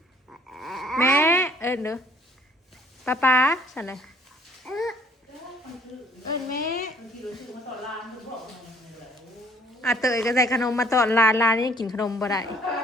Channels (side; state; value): both; normal; correlation 0.60